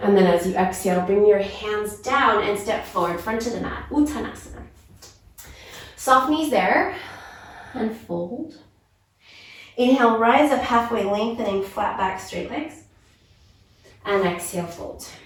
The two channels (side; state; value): both; identical; correlation 1.00